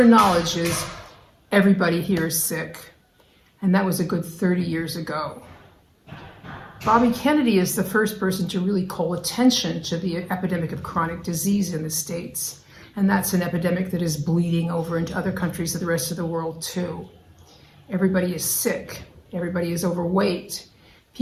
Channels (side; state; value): both; identical; correlation 1.00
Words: knowledge, is, "Everybody here is sick." And that was a good 30 years ago. Bobby Kennedy is the first person to really call attention to the epidemic of chronic disease in the States. And that's an epidemic that is bleeding over into other countries of the rest of the world too. Everybody is sick. Everybody is overweight.